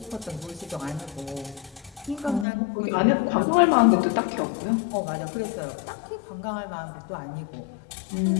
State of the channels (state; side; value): drops out; right; at 2.5 s